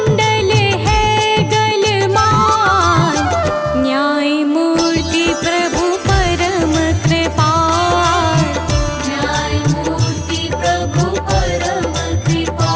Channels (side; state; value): both; identical; correlation 1.00